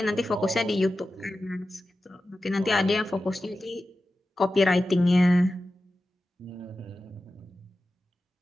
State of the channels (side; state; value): both; normal; correlation 0.93